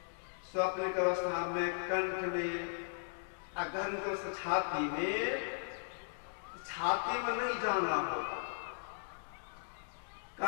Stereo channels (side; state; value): right; silent; digital silence